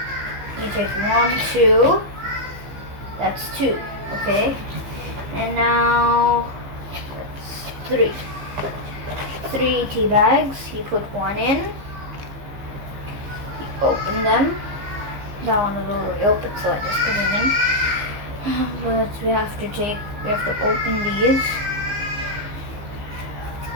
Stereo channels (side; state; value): left; late; 15 ms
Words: you take 1, 2. That's 2, okay? And now that's 3. 3 tea bags. You put 1 in. You open them. That one is already open, so I just put it in. But we have to open these.